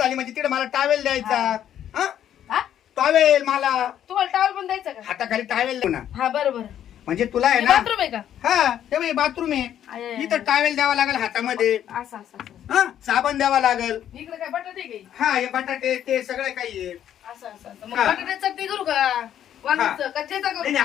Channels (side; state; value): right; quieter; 10.5 dB